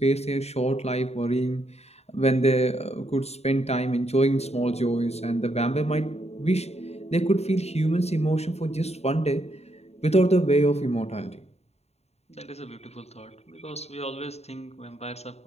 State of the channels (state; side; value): late; right; 0.31 ms